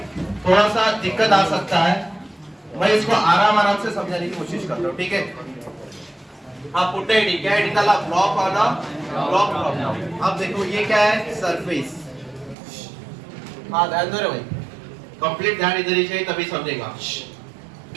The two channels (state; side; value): drops out; left; at 12.6 s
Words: थोड़ा सा दिक्कत आ सकता है, मैं इसको आराम से समझाने की कोशिश करता हूँ, ठीक है। आप पुट आईडी क्या आईडी डाला, ब्लॉक वाला ब्लॉक ब्लॉक। अब देखो ये क्या है, सरफेस। हाँ ध्यान दो रे भाई, कंप्लीट ध्यान इधर ही चाहिए तभी समझेगा।